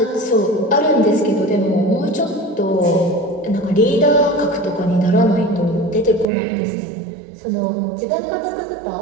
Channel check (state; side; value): drops out; left; at 6.2 s